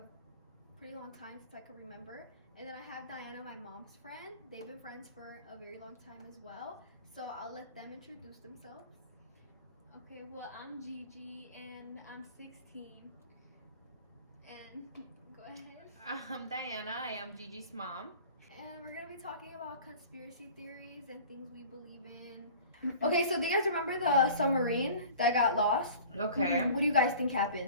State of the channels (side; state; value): both; inverted; correlation -0.43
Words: pretty long time since I can remember. And then I have Diana, my mom's friend. They've been friends for a very long time as well. So I'll let them introduce themselves. Okay, well, I'm Gigi and I'm 16. And go ahead. I'm Diana. I am Gigi's mom. And we're going to be talking about conspiracy theories and things we believe in. Okay, so do you guys remember the submarine that got lost? Okay. What do you guys think